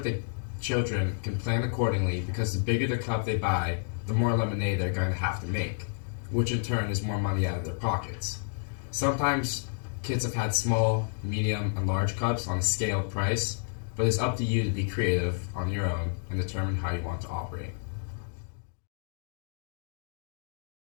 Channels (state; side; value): silent; right; digital silence